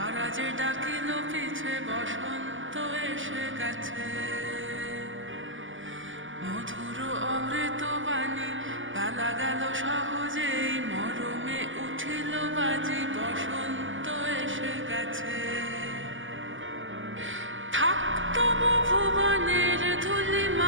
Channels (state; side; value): late; left; 0.57 ms